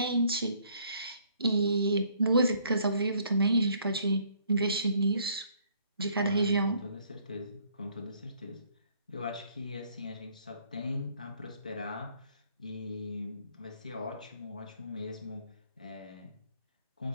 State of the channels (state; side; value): inverted; both; correlation -0.64